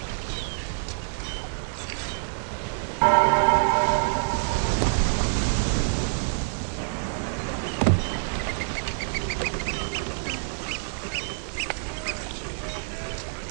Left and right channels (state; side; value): silent; left; 60 dB below the other